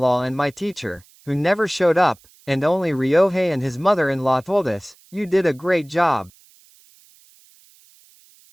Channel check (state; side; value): noise; right; hiss, 29 dB below the sound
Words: and my teacher, who never showed up, and only Ryohei and his mother-in-law told us, "You did a great job."